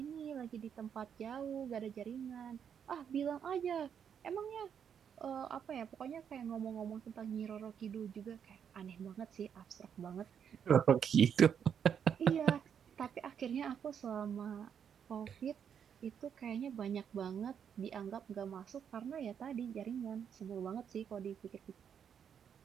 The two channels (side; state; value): left; quieter; 7.9 dB